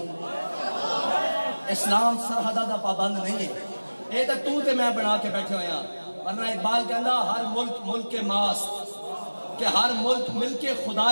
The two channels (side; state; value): both; inverted; correlation -1.00